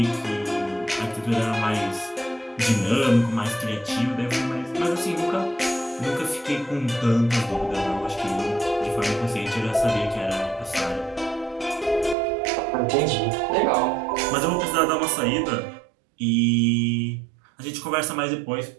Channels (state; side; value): drops out; left; at 12.2 s